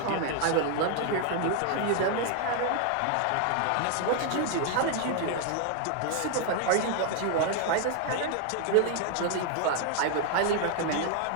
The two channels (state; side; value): different; both; correlation 0.00